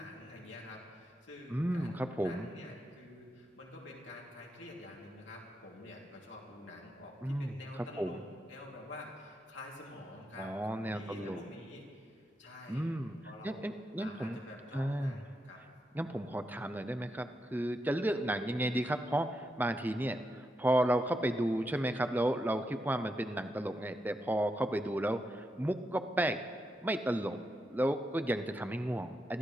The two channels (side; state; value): both; normal; correlation 0.84